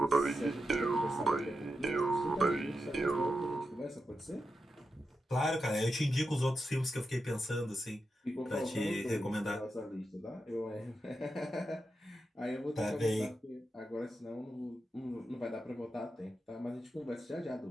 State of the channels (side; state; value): both; normal; correlation 0.88